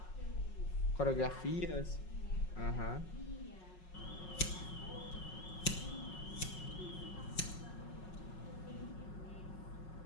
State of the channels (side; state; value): right; late; 5.5 ms